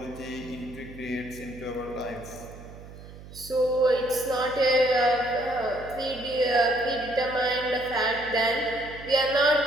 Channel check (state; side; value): noise; right; hum, 16 dB below the sound